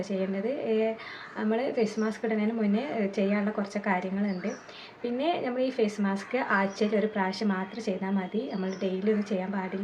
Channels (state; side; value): identical; both; correlation 1.00